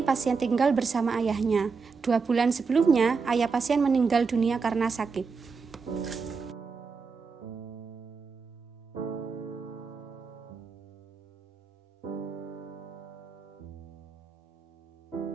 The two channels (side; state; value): left; quieter; 5.0 dB